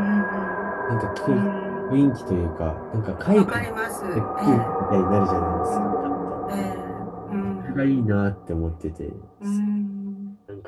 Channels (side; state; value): both; identical; correlation 1.00